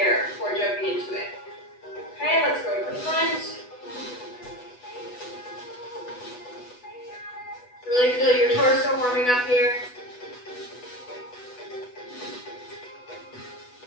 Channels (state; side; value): late; right; 8.1 ms